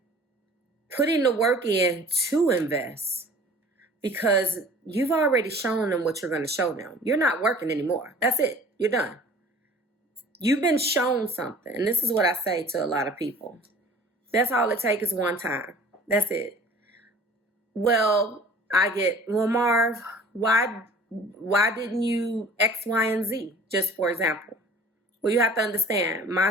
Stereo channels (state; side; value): normal; both; correlation 0.47